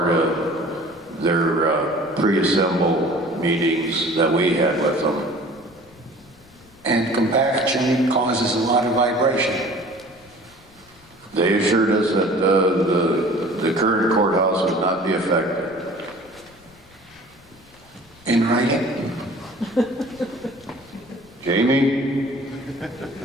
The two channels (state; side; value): noise; left; rumble, 29 dB below the sound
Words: of their pre-assemble meetings that we had with them. And compaction causes a lot of vibration. They assured us that the current courthouse would not be affected. In writing? Jamie?